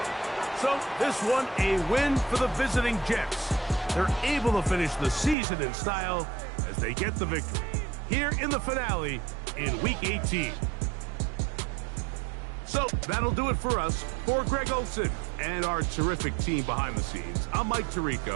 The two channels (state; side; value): drops out; left; at 5.4 s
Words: So this one a win for the visiting Jets. They're able to finish the season in style as they get the victory here in the finale in Week 18. So that'll do it for us. For Greg Olson and our terrific team behind the scenes, I'm Mike